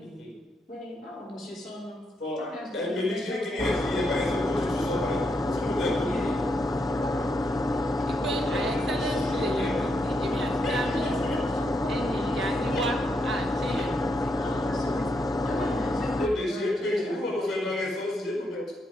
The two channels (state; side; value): normal; both; correlation 0.79